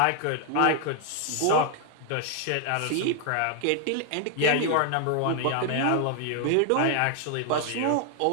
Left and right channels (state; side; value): different; both; correlation 0.00